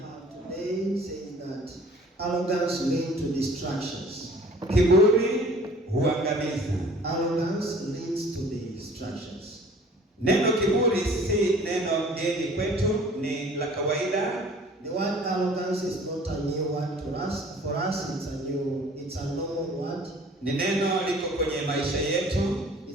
have today says that arrogance leads to distractions. Kiburi huangamiza. Arrogance leads to distractions. Neno kiburi si neno geni kwetu, ni la kawaida. The word arrogance is not a new word to us. For us, it's a normal word. Ni neno liko kwenye maisha yetu.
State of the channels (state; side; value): normal; both; correlation 0.50